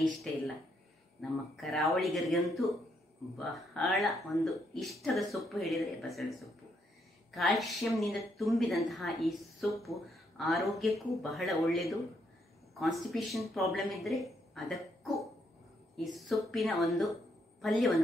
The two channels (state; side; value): normal; both; correlation 0.75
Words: ಇಷ್ಟ ಇಲ್ಲ? ನಮ್ಮ ಕರಾವಳಿಗರಿಗಂತೂ ಬಹಳ ಒಂದು ಇಷ್ಟದ ಸೊಪ್ಪು ಹೇಳಿದರೆ ಬಸಳೆ ಸೊಪ್ಪು. ಕ್ಯಾಲ್ಸಿಯಂನಿಂದ ತುಂಬಿದಂತಹ ಈ ಸೊಪ್ಪು ಆರೋಗ್ಯಕ್ಕೂ ಬಹಳ ಒಳ್ಳೆಯದು. ಕಾನ್ಸ್ಟಿಪೇಷನ್ ಪ್ರಾಬ್ಲಮ್ ಇದ್ದರೆ ಅದಕ್ಕೂ ಈ ಸೊಪ್ಪಿನ ಒಂದು